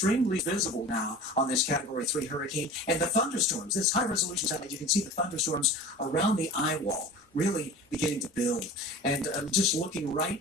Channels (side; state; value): both; normal; correlation 0.38